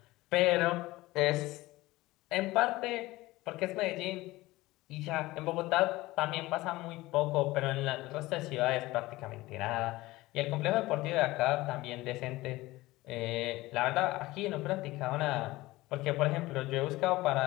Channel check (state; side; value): quieter; right; 19.0 dB